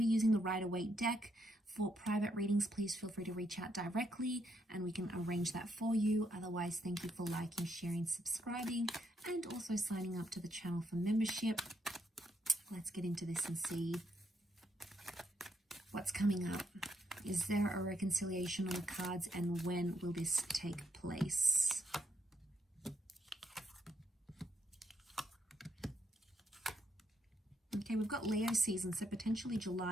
using the Rider-Waite deck. For private readings, please feel free to reach out directly and we can arrange that for you. Otherwise, thank you for liking, sharing, subscribing, and also signing up to the channel for membership. Let's get into this and see what's coming up. Is there a reconciliation on the cards, and when will this take place? Okay, we've got Leo season, so potentially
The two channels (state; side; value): normal; both; correlation 0.77